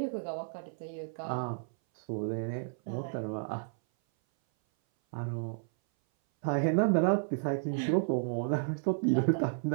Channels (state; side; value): silent; left; 56 dB below the other